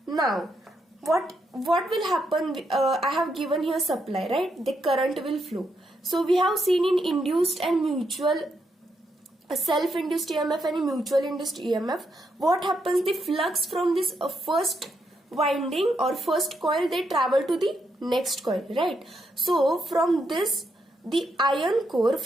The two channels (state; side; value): normal; both; correlation 0.80